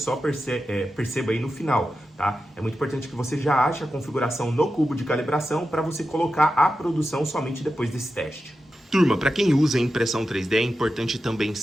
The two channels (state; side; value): normal; both; correlation 0.91